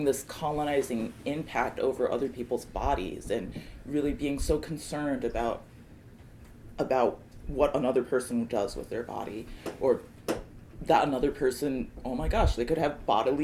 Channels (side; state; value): both; identical; correlation 1.00